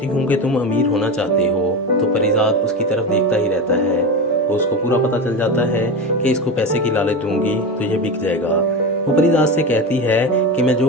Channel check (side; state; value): both; normal; correlation 0.22